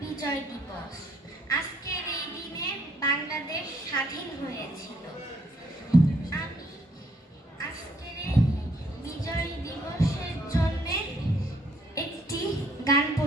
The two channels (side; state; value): both; normal; correlation 0.68